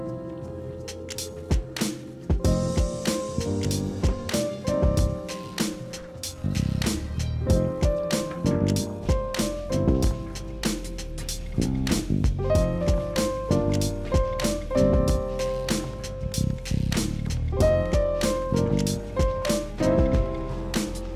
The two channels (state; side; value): identical; both; correlation 1.00